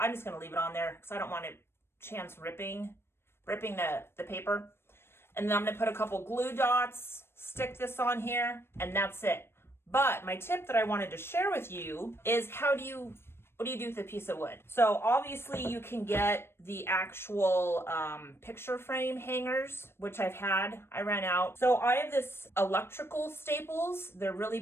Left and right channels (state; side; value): late; right; 0.12 ms